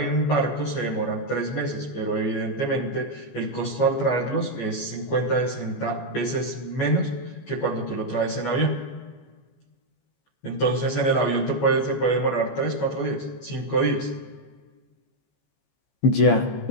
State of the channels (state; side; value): late; right; 15 ms